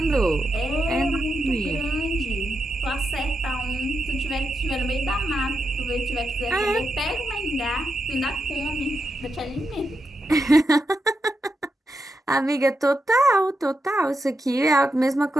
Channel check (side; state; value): both; normal; correlation 0.86